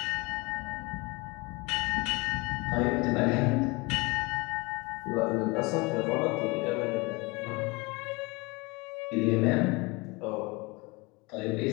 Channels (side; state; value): right; quieter; 25.8 dB